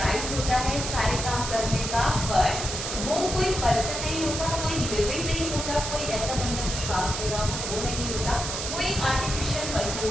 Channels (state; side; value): noise; right; hiss, 4 dB below the sound